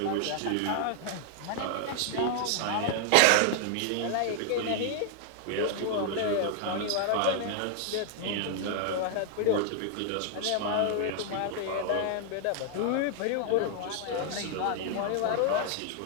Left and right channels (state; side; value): different; both; correlation 0.00